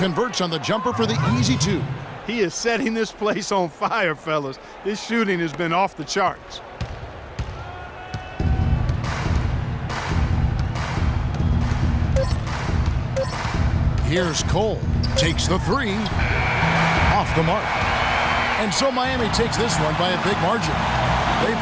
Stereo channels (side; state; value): both; identical; correlation 1.00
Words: on the jumper for the easy 2. He is setting this place on fire, fellas. His shooting has been off the charts. Here's Cole. Takes the 3. Off the mark. And so Miami takes this one by a big margin. They